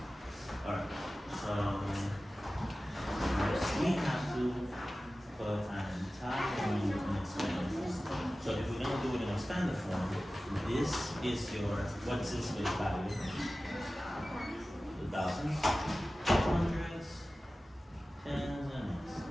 Alright. So first we have to put an entire number in expander form. So if we're gonna do it in expander form, this is your what's this space value? The thousands, hundreds, tens, and ones,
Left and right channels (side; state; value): both; normal; correlation 0.96